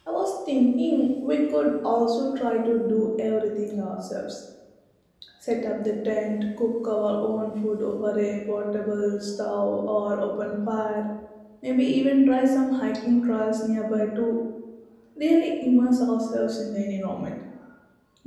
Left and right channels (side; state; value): both; identical; correlation 1.00